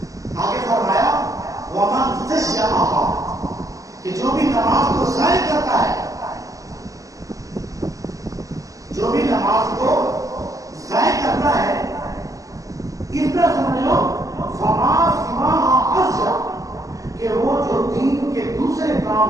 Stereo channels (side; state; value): left; late; 0.16 ms